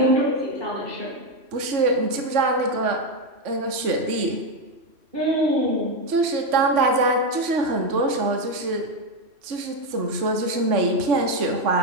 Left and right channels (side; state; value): left; late; 3.5 ms